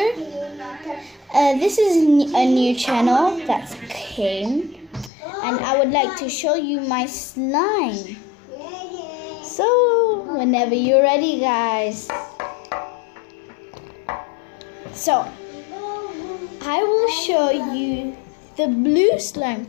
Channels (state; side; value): drops out; right; at 5.1 s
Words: This is a new channel that came and I would like to show you my slime. So whenever you're ready guys. So I will show you the blue